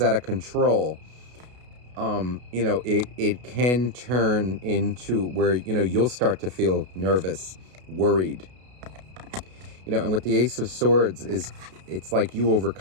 of control, you know, it can turn into where, you know, you'll start to feel nervous, worried. You know, and with the Ace of Swords it's like you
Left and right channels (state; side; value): late; left; 32 ms